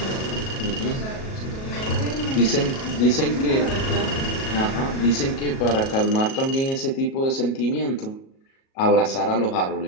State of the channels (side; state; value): right; late; 37 ms